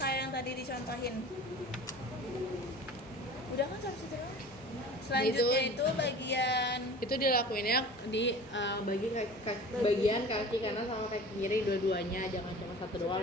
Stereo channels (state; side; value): normal; both; correlation 0.40